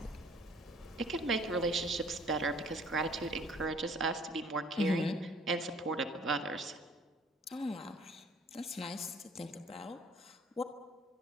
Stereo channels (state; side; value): normal; both; correlation 0.55